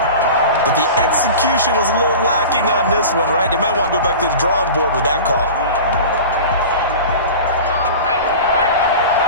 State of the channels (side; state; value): both; inverted; correlation -0.34